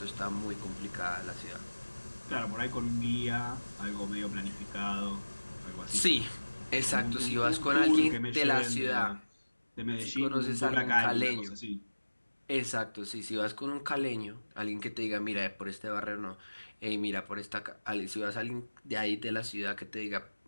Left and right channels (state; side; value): inverted; both; correlation -1.00